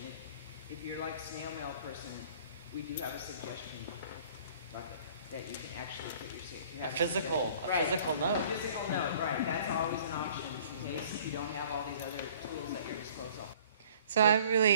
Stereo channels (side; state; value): both; inverted; correlation -0.53